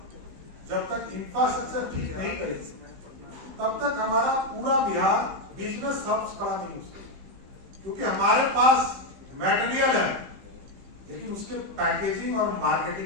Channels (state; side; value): late; left; 15 ms